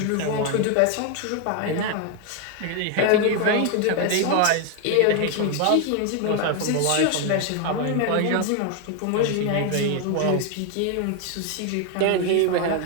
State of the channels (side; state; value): both; different; correlation 0.01